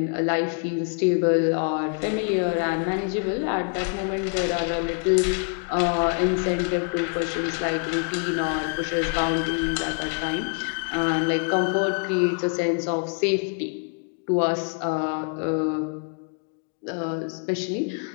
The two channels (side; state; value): right; quieter; 40.0 dB